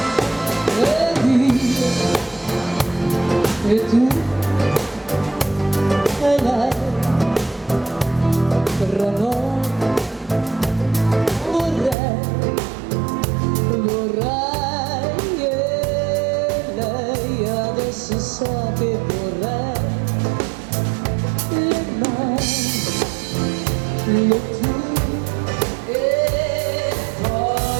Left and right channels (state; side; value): drops out; left; at 12.0 s